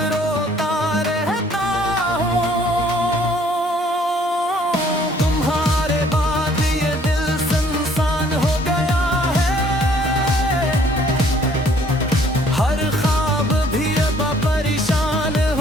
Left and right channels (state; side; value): normal; both; correlation 0.60